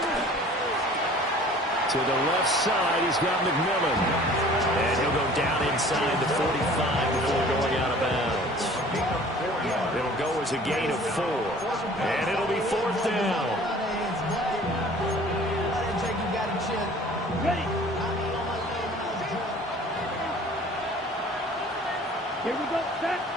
To the left side, he's got McMillan. And he'll go down inside the 45 before going out of bounds. It'll go as a gain of 4. And it'll be fourth down. Ready. Here we go. Set.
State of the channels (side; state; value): both; normal; correlation 0.49